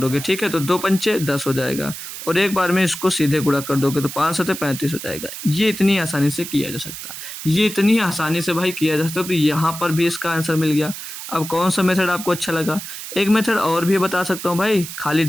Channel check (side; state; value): right; noise; hiss, 9 dB below the sound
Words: ठीक है। तो 2 पंचे 10 हो जाएगा और एक बार में इसको सीधे गुणा कर दोगे तो 5 सते 35 हो जाएगा। ये इतनी आसानी से किया जा सकता है, ये इतनी आसानी से भाई किया जा सकता है। तो यहाँ पर भी इसका आंसर मिल गया। अब कौन सा मेथड आपको अच्छा लगा, एक मेथड और भी बता सकता हूँ भाई, खाली